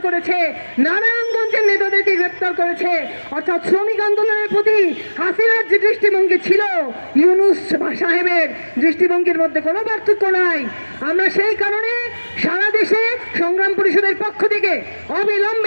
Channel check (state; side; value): inverted; both; correlation -1.00